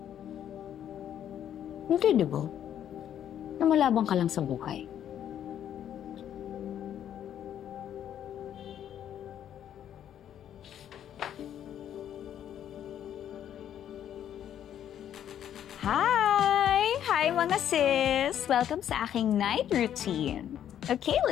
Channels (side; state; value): right; quieter; 10.2 dB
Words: Hindi, di ba? Namalabang ka lang sa buhay. Hi mga sis! Welcome sa aking night routine. Okay,